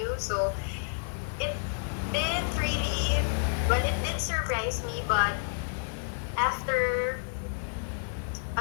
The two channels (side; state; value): right; silent; 56 dB below the other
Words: So, it didn't really, well, it did surprise me, but after